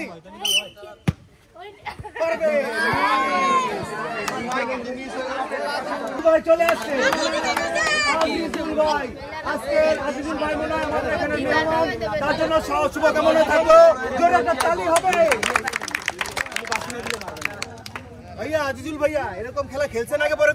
পারবে ভাই চলে আসছে আজিজুল ভাই আজকে আজিজুল ভাই মনে হয় আমাদের এখানে মেহমান তার জন্য শুভকামনা থাকলো জোরে একটা তালি হবে ভাইয়া আজিজুল ভাইয়া এরকম খেলা খেলছেন আগে পরে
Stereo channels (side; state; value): both; identical; correlation 1.00